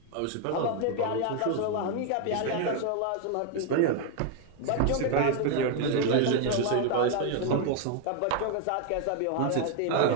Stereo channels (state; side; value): different; both; correlation 0.01